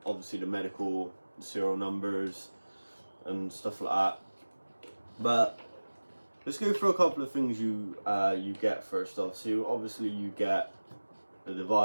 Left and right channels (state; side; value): inverted; both; correlation -1.00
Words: obviously the medical serial numbers and stuff like that. But let's go through a couple of things you get first off. So obviously you get the